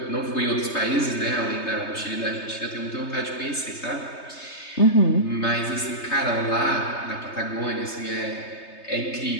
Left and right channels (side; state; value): right; late; 3.3 ms